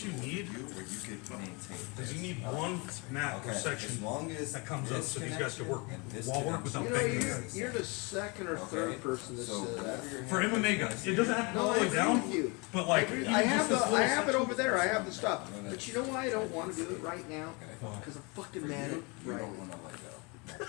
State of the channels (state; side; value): quieter; right; 29.4 dB